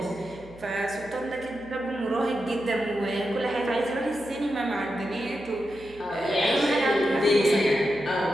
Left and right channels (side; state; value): right; noise; hum, 21 dB below the sound